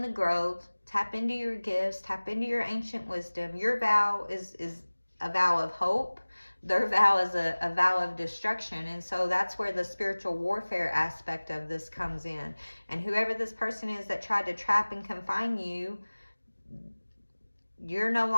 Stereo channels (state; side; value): inverted; both; correlation -1.00